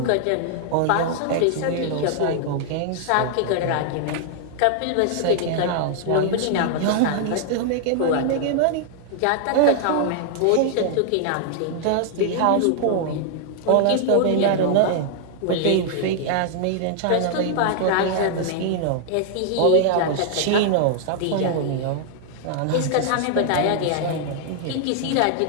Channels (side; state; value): both; different; correlation -0.01